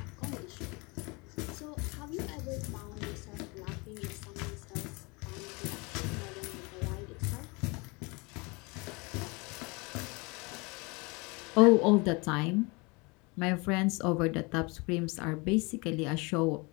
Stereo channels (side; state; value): right; quieter; 27.8 dB